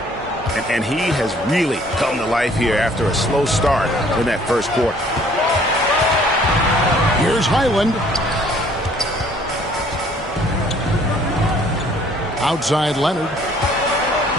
And he has really come to life here after a slow start in that first quarter. Here's Highland. Outside Leonard.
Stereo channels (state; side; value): normal; both; correlation 0.58